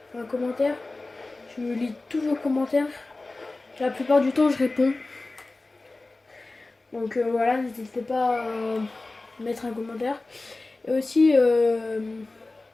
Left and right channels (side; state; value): right; quieter; 3.2 dB